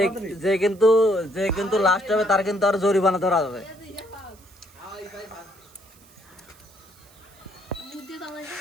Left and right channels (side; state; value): right; noise; hiss, 26 dB below the sound